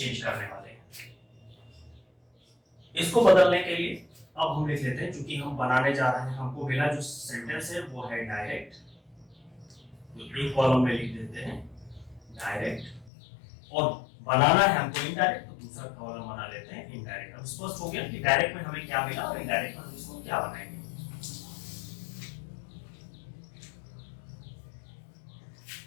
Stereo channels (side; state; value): right; drops out; at 13.1 s